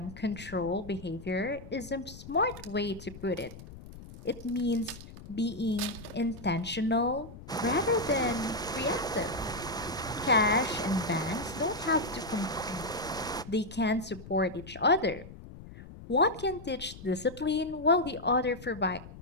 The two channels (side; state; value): left; noise; rumble, 15 dB below the sound